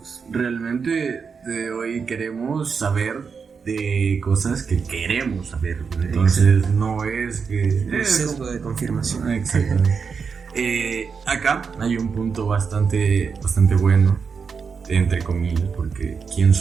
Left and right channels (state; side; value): quieter; left; 5.7 dB